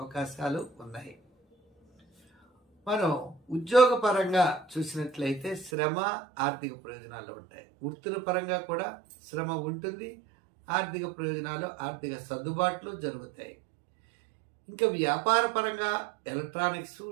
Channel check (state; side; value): drops out; left; at 5.7 s